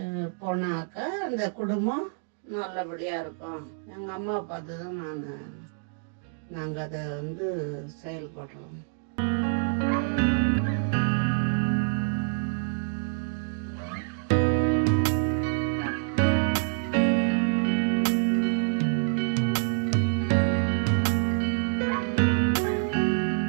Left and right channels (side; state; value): left; silent; digital silence